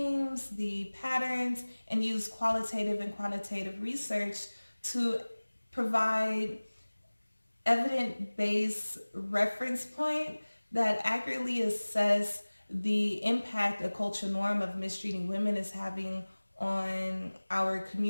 the patterns, and use qualitative and quantitative research to provide evidence-based reference point that accurately assess the impact a cultural norm of mistreating women is having on our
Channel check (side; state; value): both; inverted; correlation -1.00